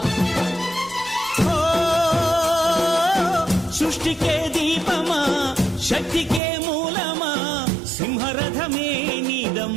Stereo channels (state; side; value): drops out; left; at 6.4 s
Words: సృష్టికే దీపమా శక్తికే మూలమా సింహరథమే